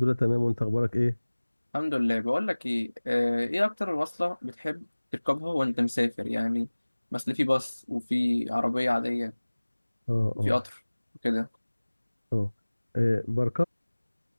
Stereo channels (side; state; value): both; inverted; correlation -1.00